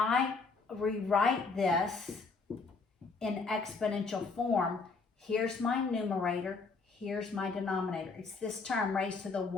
rewrite this in exponential form, here's my numerator, here's my denominator. It's this term raised to the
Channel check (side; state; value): right; quieter; 4.3 dB